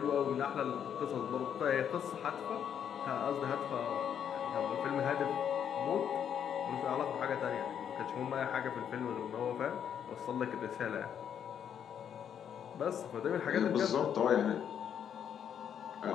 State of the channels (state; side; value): quieter; right; 8.7 dB